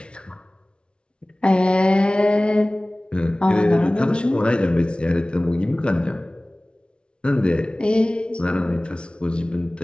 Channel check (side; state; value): right; late; 0.057 ms